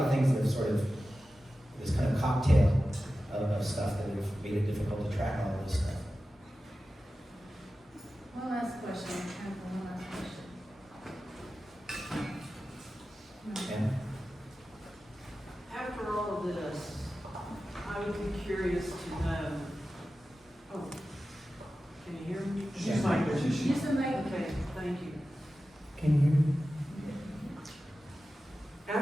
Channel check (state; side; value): normal; both; correlation 0.94